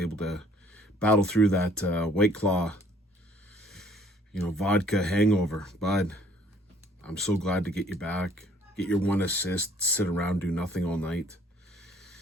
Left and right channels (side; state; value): both; normal; correlation 0.60